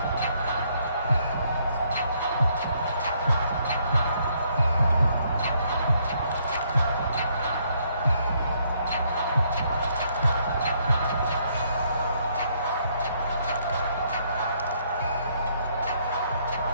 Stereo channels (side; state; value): both; inverted; correlation -0.70